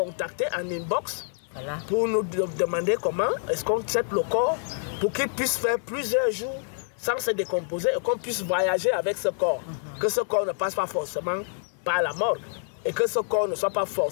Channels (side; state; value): right; silent; digital silence